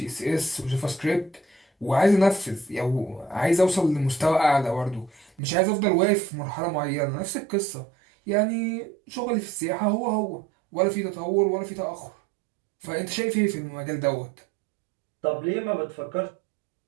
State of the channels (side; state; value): left; drops out; at 5.3 s